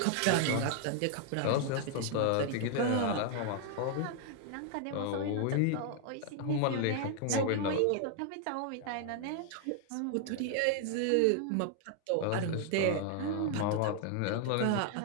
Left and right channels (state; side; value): different; both; correlation 0.00